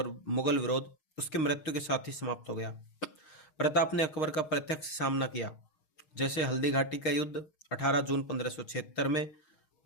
विरोध उसकी मृत्यु के साथ ही समाप्त हो गया। प्रताप ने अकबर का प्रत्यक्ष सामना किया, जैसे हल्दी घाटी का युद्ध 18 जून 1576 में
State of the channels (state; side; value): late; right; 6.4 ms